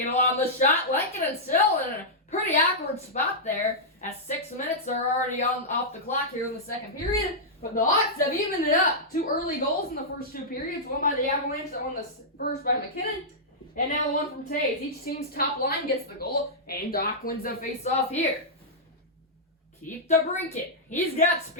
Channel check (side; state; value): both; normal; correlation -0.10